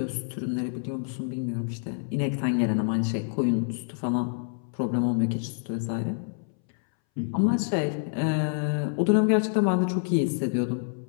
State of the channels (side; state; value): right; silent; 60 dB below the other